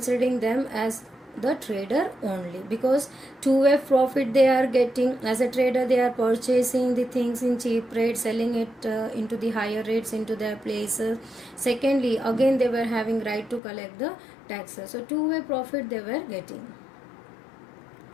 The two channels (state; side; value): drops out; right; at 13.6 s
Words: them as the trader only, because two-way profit they are getting. As a trader they are purchasing the things in cheap rates, selling it into the higher rates into their places. Secondly, again they were having right to collect the taxes. So two-way profit they were getting.